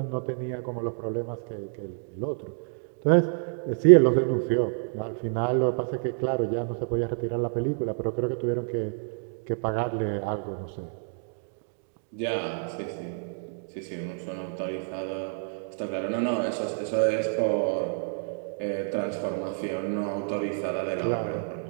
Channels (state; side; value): silent; left; digital silence